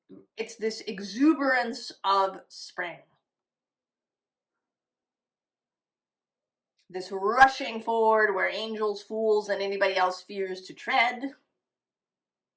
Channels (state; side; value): identical; both; correlation 1.00